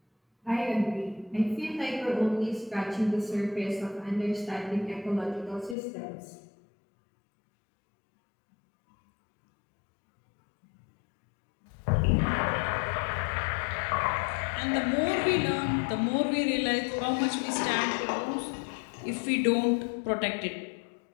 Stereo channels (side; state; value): right; drops out; at 5.8 s